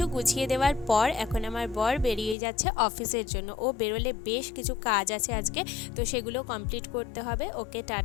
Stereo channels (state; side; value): drops out; right; at 2.4 s